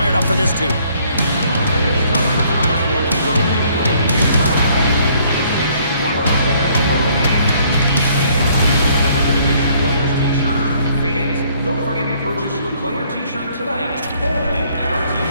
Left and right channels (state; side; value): inverted; both; correlation -0.63